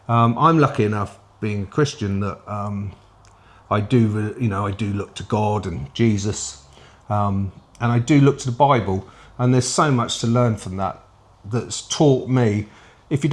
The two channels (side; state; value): both; identical; correlation 1.00